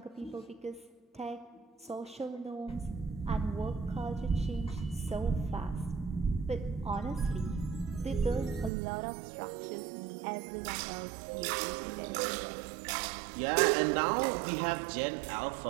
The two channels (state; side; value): drops out; left; at 8.7 s